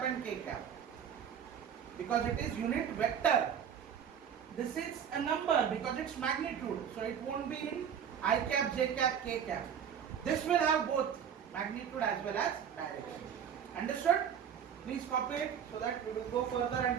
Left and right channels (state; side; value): quieter; left; 8.1 dB